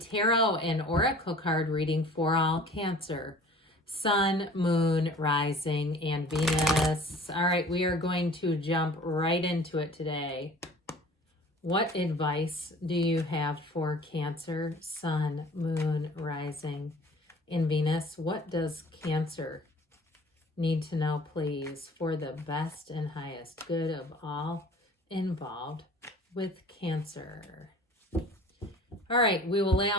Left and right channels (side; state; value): both; normal; correlation 0.47